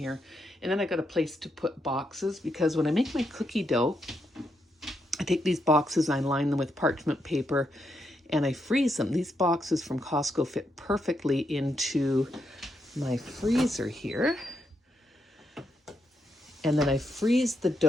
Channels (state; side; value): normal; both; correlation 0.81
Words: And then I got a place to put boxes because when I make my cookie dough, I take these boxes, I line them with parchment paper and I freeze them. These boxes from Costco fit perfectly into my freezer here. And then I freeze the